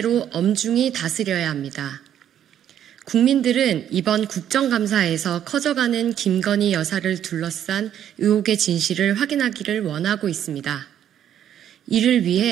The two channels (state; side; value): quieter; left; 10.2 dB